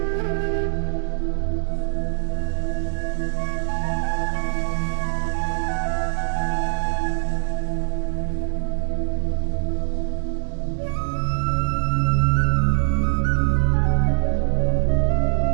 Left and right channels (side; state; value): left; silent; digital silence